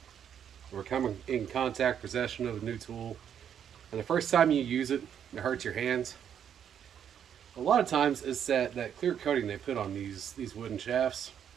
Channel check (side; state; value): left; quieter; 8.8 dB